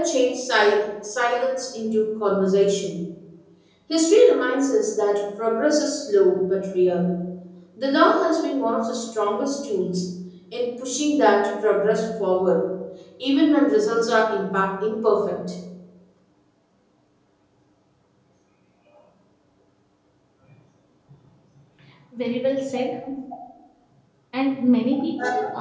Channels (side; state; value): both; identical; correlation 1.00